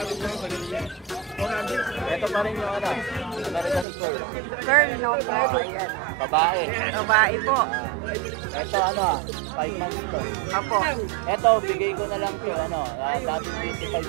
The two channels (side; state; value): left; drops out; at 3.9 s